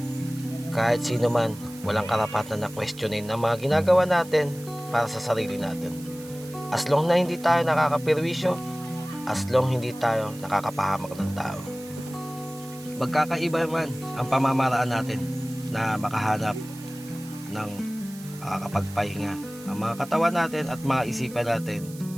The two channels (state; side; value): noise; right; hiss, 19 dB below the sound